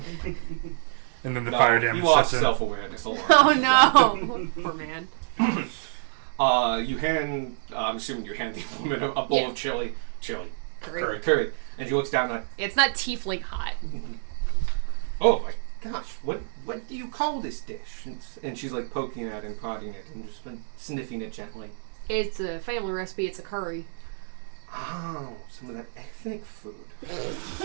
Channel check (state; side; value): silent; left; digital silence